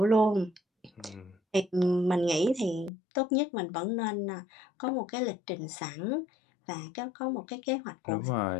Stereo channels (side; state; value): right; drops out; at 2.9 s